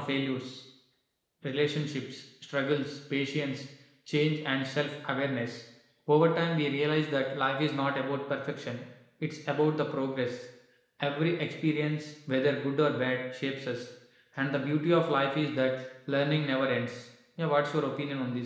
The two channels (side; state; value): both; identical; correlation 1.00